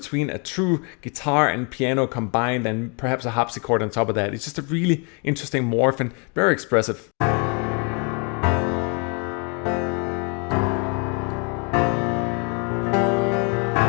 a true guitar and piano combined, and perhaps a harpsichord on top of that. It's just a really interesting morph and very expressive.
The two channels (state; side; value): quieter; right; 35.2 dB